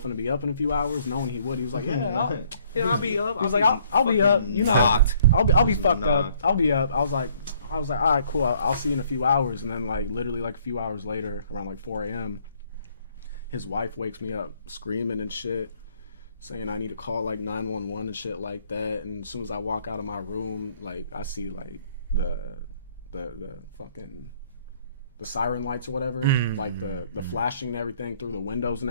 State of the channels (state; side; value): inverted; both; correlation -0.62